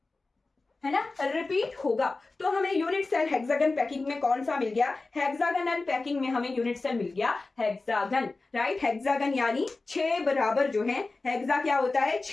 है ना, रिपीट होगा। तो हमें यूनिट सेल हेक्सागन पैकिंग में कौन सा मिल गया? हेक्सागनल पैकिंग में हमें यूनिट सेल मिल गया हेक्सागन। राइट, हेक्सागन यानी 6 बराबर जो है, हेक्सा क्या होता है?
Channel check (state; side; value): quieter; right; 3.5 dB